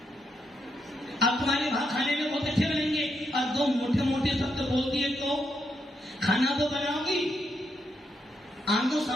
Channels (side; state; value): both; normal; correlation 0.80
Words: अब तुम्हारे भाग खाने में बहुत अच्छे बनेंगे। और 2 मोटे मोटे शब्द बोल दिए तो खाना तो बनाओगी, आंखों